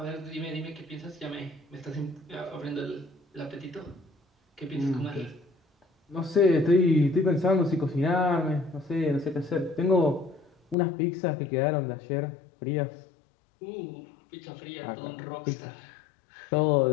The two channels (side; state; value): right; drops out; at 10.8 s